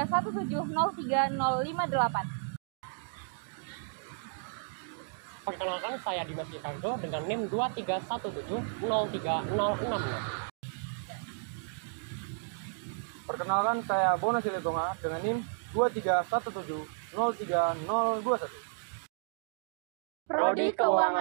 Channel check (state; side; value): silent; left; digital silence